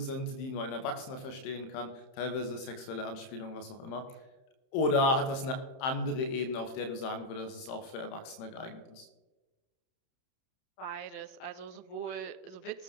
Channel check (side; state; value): right; late; 30 ms